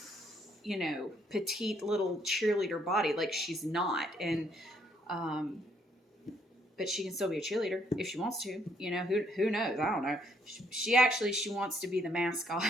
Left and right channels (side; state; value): both; normal; correlation 0.70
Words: petite little cheerleader body. Like, she's not. And, but she can still be a cheerleader if she wants to. Who knows? I don't know. She wants to be the